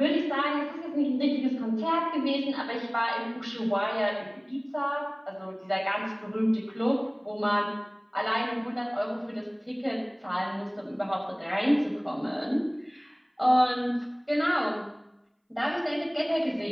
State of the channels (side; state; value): both; identical; correlation 1.00